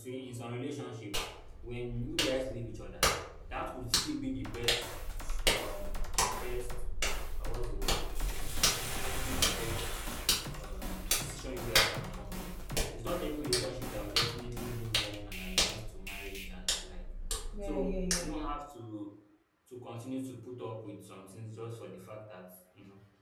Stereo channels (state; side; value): identical; both; correlation 1.00